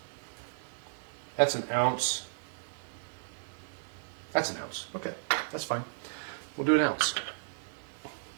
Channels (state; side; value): silent; left; digital silence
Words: That's an ounce. That's an ounce. Okay, that's fine. We'll do an ounce.